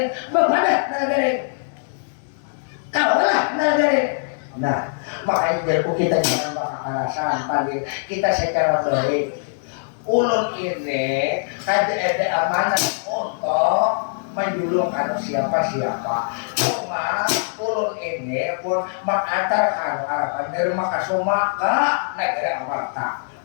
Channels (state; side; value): silent; right; digital silence